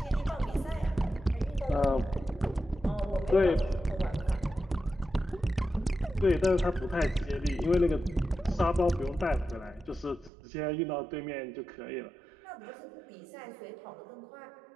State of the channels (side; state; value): left; drops out; at 10.3 s